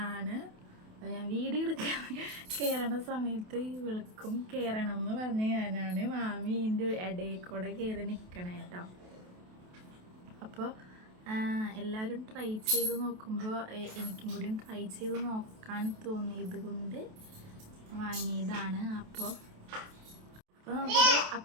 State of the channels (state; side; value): late; left; 28 ms